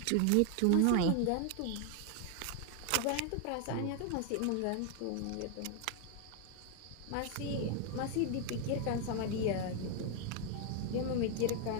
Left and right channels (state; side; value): different; both; correlation 0.00